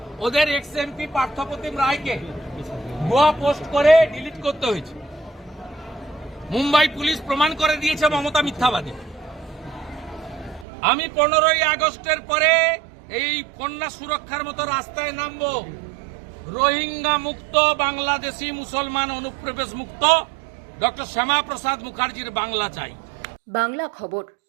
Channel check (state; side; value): drops out; left; at 10.7 s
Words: ওদের এক্স এমপি পার্থপ্রতিম রায়কে ভুয়া পোস্ট করে ডিলিট করতে হয়েছে। মুম্বাই পুলিশ প্রমাণ করে দিয়েছে মমতা মিথ্যাবাদী। আমি 15ই আগস্টের পরে এই কন্যা সুরক্ষার মতো রাস্তায় নামবো। রোহিঙ্গা মুক্ত, বাংলাদেশি মুসলমান অনুপ্রবেশ মুক্ত, ডক্টর শ্যামা প্রসাদ মুখার্জির বাংলা চাই। বাংলা খবর,